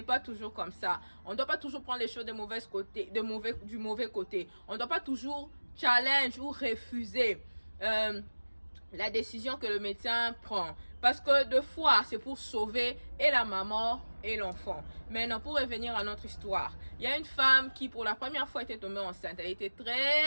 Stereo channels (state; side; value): inverted; both; correlation -1.00